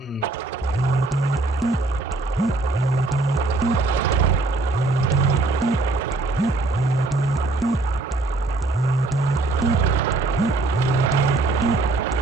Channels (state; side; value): quieter; left; 3.1 dB